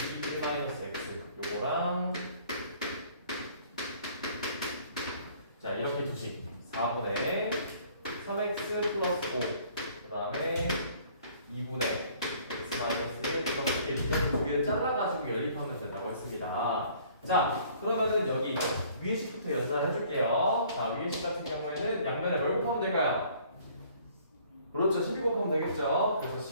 1-x 요거랑, 자, 이렇게 두식 4분의 3x 플러스 5, 그 다음에 2분의 x 마이너스 1 플러스 1, 이렇게 두 개를 잘라가지고 연립하면 된다고 했습니다. 자, 그러면은 여기 위에 식부터 연산을 해줄게요. 자, 위에 식 같은 경우에는 양면에 뭘 곱하면 될까요? 그렇죠, 12 곱하면 되겠죠. 그래서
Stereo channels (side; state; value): both; inverted; correlation -0.57